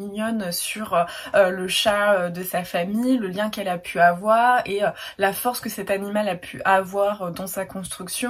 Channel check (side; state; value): both; identical; correlation 1.00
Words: sur le chat de sa famille, le lien qu'elle a pu avoir et la force que cet animal a pu avoir dans sa